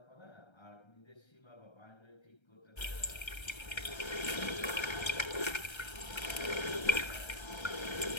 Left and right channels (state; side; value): late; right; 1.3 ms